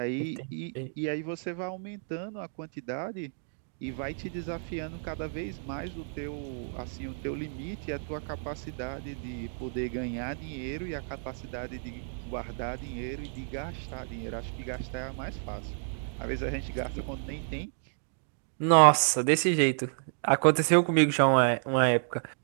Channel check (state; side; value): silent; left; digital silence